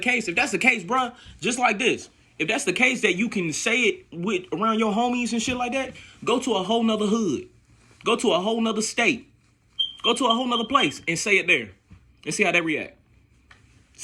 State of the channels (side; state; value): both; identical; correlation 1.00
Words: bruh, just like this, if that's the case that you can say it with around your homies and shit like that, go to a whole nother hood. Go to a whole nother state. Go to a whole nother place and say it there. And see how they react.